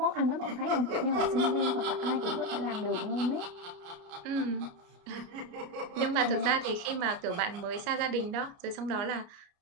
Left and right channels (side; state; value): left; late; 29 ms